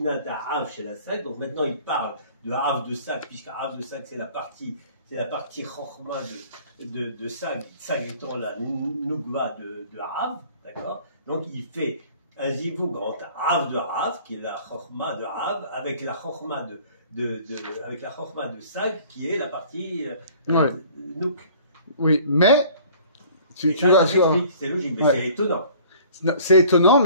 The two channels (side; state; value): both; inverted; correlation -0.51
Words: העב של הסג, donc maintenant il parle de Av de Sag, puisque Av de Sag c'est la partie Chochma de Sag, Sag étant la Nugva de Av, d'accord. Donc il fait un zivug entre Av de Av, qui est la Chochma de Av, avec la Chochma avec la Chochma de Sag, qui est la partie Nuk. Oui, mais Tu vas, c'est logique, mais c'est étonnant. C'est étonnant,